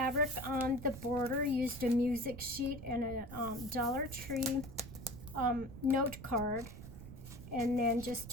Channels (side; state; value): right; noise; rumble, 13 dB below the sound